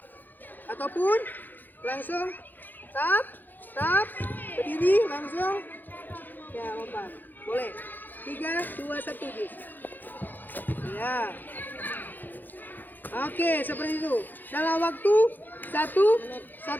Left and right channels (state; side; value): late; right; 0.087 ms